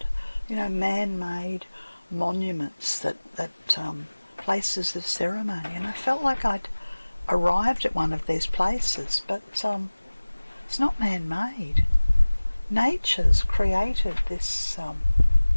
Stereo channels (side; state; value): both; inverted; correlation -1.00